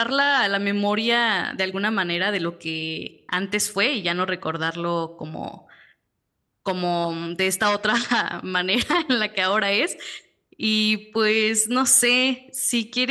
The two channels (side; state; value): both; identical; correlation 1.00